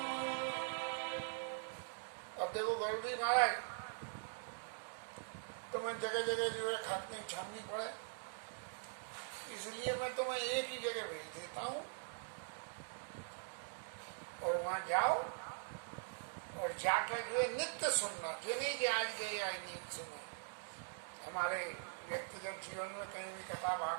अब देखो गरुड़ी महाराज, तुम्हें जगह जगह जो है खाकनी छाननी पड़े, इसलिए मैं तुम्हें एक ही जगह भेज देता हूं और वहां जाओ और जाकर जो है नित्य सुनना। जो नहीं कि आज गए आज नहीं सुने। हमारे व्यक्तिगत जीवन में कहीं भी कथा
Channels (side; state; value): left; silent; digital silence